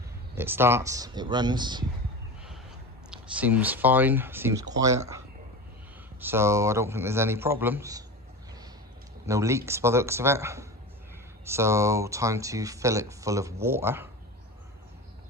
it starts, it runs, seems fine, seems quiet. so I don't think there's any problems. No leaks by the looks of it. So time to fill it full of water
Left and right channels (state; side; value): normal; both; correlation 0.27